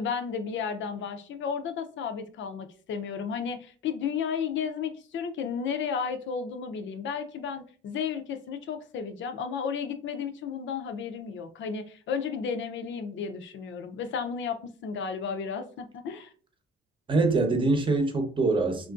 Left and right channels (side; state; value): both; normal; correlation 0.40